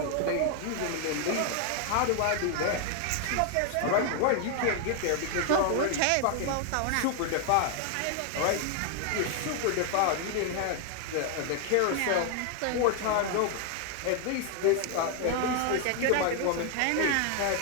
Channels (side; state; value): both; different; correlation 0.00